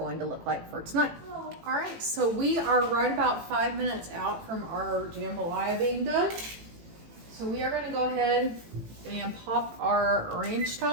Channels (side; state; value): left; late; 18 ms